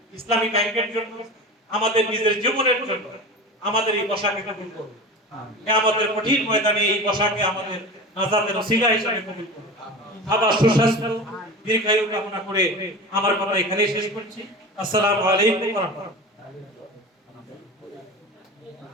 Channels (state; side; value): normal; both; correlation 0.31